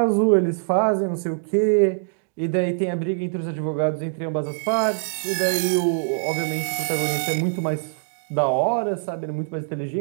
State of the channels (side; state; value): left; silent; digital silence